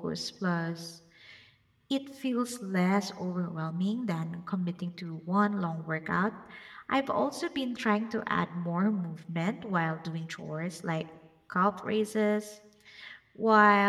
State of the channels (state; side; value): identical; both; correlation 1.00